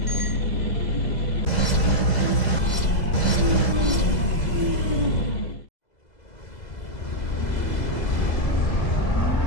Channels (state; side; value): late; right; 2.0 ms